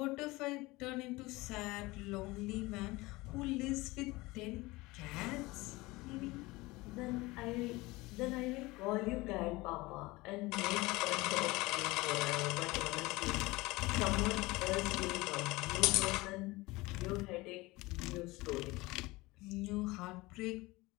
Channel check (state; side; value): quieter; right; 21.5 dB